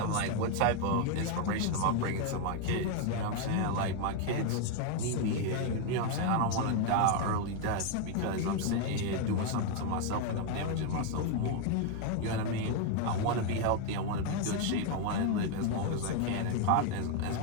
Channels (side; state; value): both; different; correlation 0.01